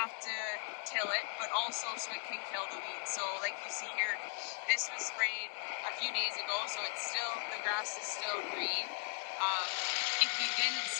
to till it, but also so it can kill the weeds. So like you see here, this was sprayed a few days ago, so it's still, the grass is still green. If we didn't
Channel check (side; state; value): right; silent; 52 dB below the other